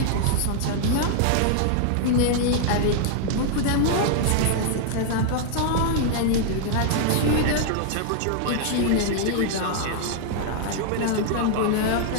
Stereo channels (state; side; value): different; both; correlation 0.00